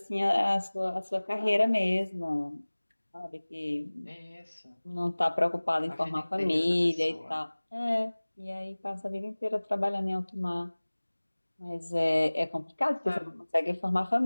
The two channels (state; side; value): inverted; both; correlation -1.00